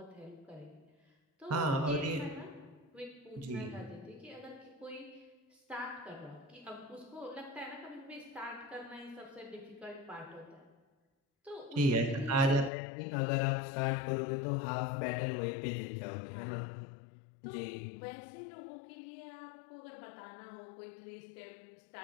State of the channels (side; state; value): right; drops out; at 12.7 s